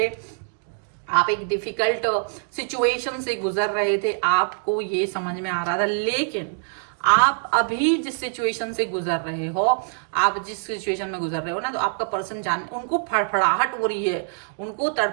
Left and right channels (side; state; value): left; silent; digital silence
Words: आप एक डिफिकल्ट सिचुएशन से गुजर रहे थे, आपको ये समझ में आ रहा था। लेकिन आप अभी जिस सिचुएशन से गुजर रहे हो, आप जिस सिचुएशन में गुजर रहे हो ना, तो आपका पर्सन जान उनको फड़फड़ाहट हो रही है, उनको